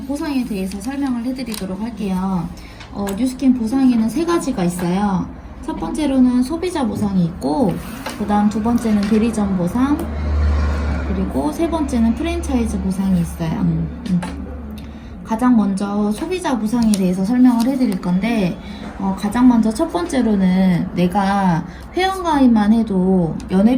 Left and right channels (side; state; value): both; identical; correlation 1.00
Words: 보상에 대해서 설명을 해드리도록 할게요. 뉴스킨 보상에는 세 가지가 있어요. 첫 번째로는 소비자 보상이 있고, 그 다음 두 번째는 대리점 보상, 그리고 세 번째는 프랜차이즈 보상이 있어요. 가장 먼저 소비자 보상에 대해서 설명을 해드릴 건데, 가장 먼저 첫 번째로는 내가 회원가입만 해도